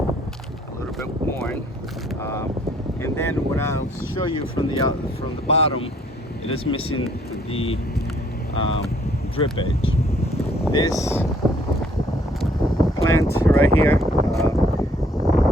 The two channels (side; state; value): both; normal; correlation 0.62